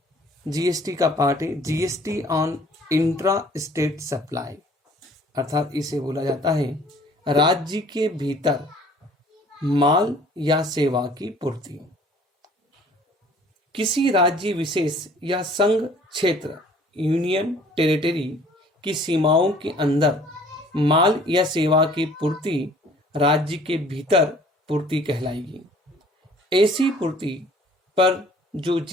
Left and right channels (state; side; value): normal; both; correlation 0.54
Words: जीएसटी का पार्ट है GST on intra state supply, अर्थात इसे बोला जाता है राज्य के भीतर माल या सेवा की पूर्ति। किसी राज्य विशेष या संघ क्षेत्र यूनियन टेरिटरी की सीमाओं के अंदर माल या सेवा की पूर्ति राज्य के भीतर पूर्ति कहलाएगी। ऐसी पूर्ति पर जो